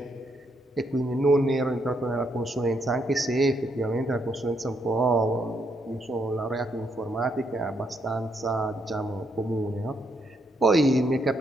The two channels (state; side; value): normal; both; correlation 0.76